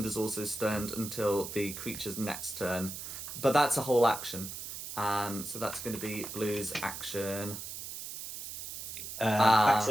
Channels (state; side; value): noise; right; hiss, 8 dB below the sound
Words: also stunned until the creature's next turn, but that's a whole action. So that's going to be Blue's action. Back